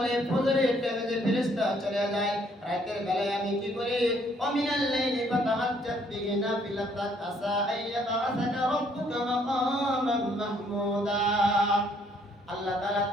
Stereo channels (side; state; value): both; normal; correlation 0.66